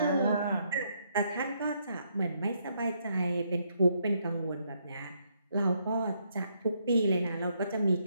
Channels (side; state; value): both; inverted; correlation -0.74